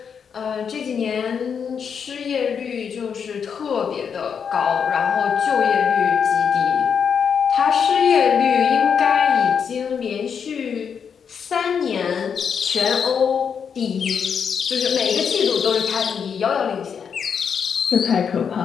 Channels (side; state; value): right; quieter; 7.0 dB